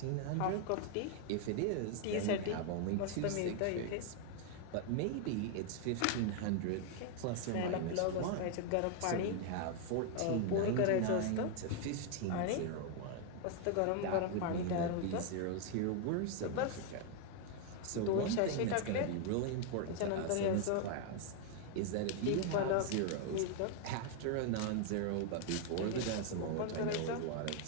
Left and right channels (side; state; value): both; different; correlation 0.00